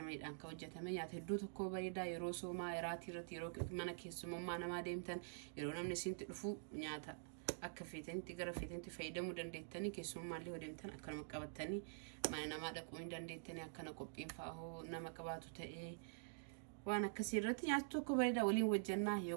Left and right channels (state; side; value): silent; left; digital silence